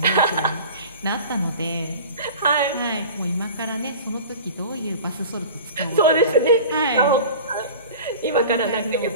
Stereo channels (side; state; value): both; inverted; correlation -0.38